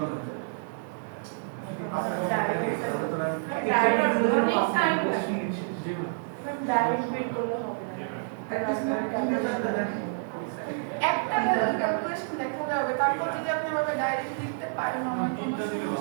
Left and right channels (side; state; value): left; silent; digital silence